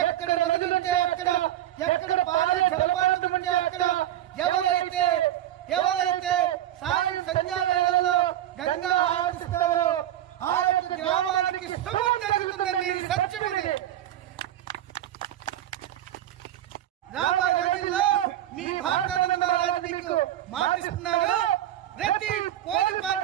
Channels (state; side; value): quieter; left; 12.5 dB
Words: ఎక్కడ నదులుంటే అక్కడ, ఎక్కడ పాలే జలపాతం ఉంటే అక్కడ ఎవరైతే సాయం సంధ్యా వేళల్లో గంగా ఆరాధిస్తారో ఆ యొక్క గ్రామానికి శుభం జరుగుతుందండి. ఇది సత్యం. ఇది రాబోయే రోజుల్లో మీ భారతానంద మహారాజు మీకు మాటిస్తున్నాడు. ప్రతి పోలి